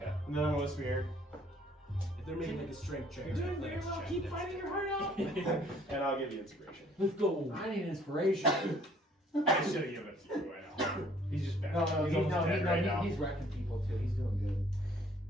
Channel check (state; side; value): normal; both; correlation 0.59